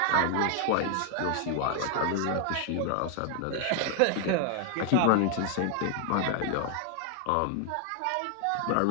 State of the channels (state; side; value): different; both; correlation 0.00